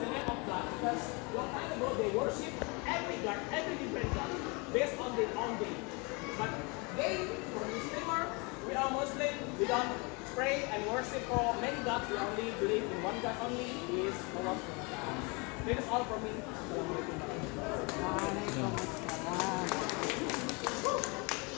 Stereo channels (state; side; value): quieter; right; 29.8 dB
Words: the name of God because long time ago they worship every God, every different God based on their own day. But they, for Muslimer, we are Muslim, we don't pray and worship for many gods, we only believe in one God only, is Allah. That is all from me.